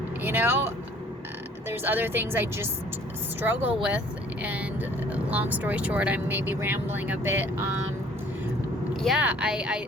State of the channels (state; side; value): normal; both; correlation 0.55